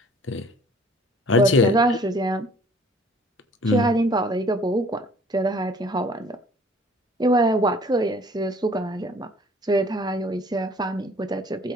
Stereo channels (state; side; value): normal; both; correlation 0.54